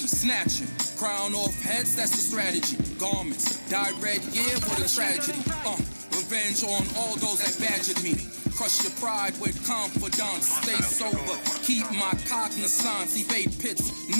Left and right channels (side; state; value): both; inverted; correlation -1.00